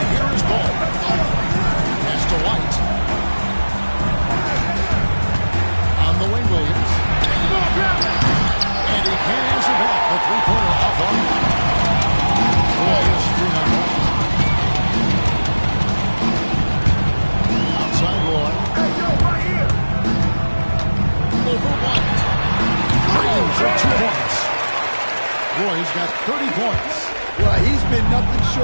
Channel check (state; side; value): inverted; both; correlation -1.00